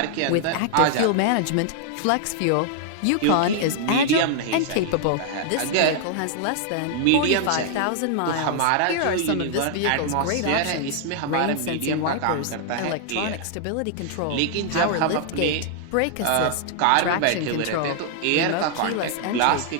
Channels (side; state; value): both; different; correlation -0.01